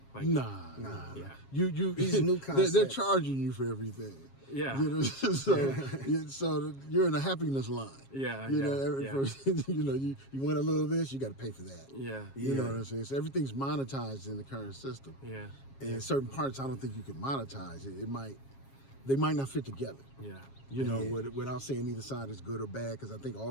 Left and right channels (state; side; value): late; right; 7.4 ms